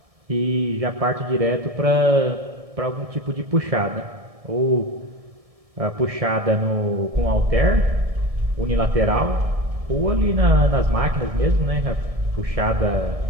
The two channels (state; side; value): late; left; 1.7 ms